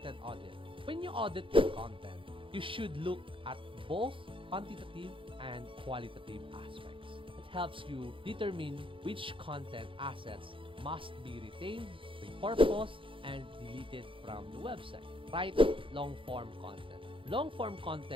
audit. When you audit your content, you should look at both quantitative and qualitative aspects. It helps you determine which content assets must be retained, repurposed, and deleted from the website. Write long-form content. Long-form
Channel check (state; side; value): late; left; 0.25 ms